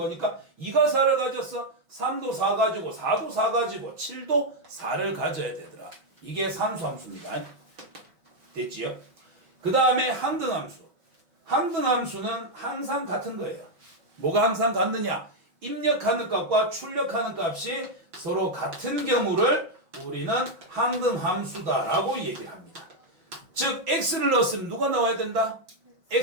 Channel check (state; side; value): late; left; 5.8 ms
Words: 2가 4를 가졌어. 3도 4 가지고 4도 4 가지고 7도 4를 가져야 되더라. 이게 상수함수입니다. 됐지요? 그 다음에 항등함수. 항등함수는 항상 같은 거예요. 뭐가 항상 같느냐? 입력하는 값과 출력하는 값이 서로 같은 경우를 우리는 항등함수다라고 얘기를 합니다. 즉 x를 넣었으면 누가 나와야 된다?